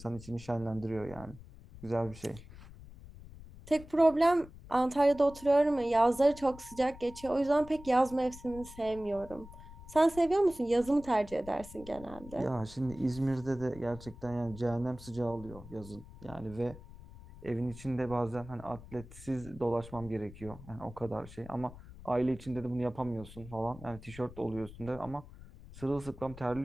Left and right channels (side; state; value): left; noise; rumble, 17 dB below the sound